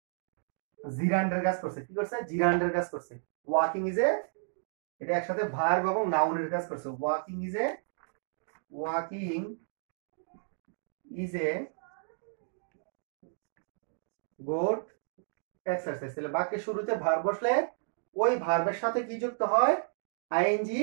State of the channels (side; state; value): left; silent; digital silence